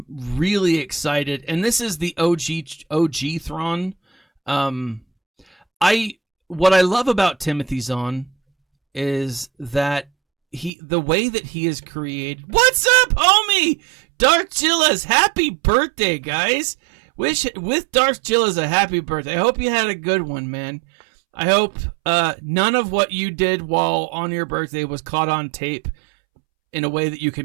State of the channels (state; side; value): drops out; left; at 10.7 s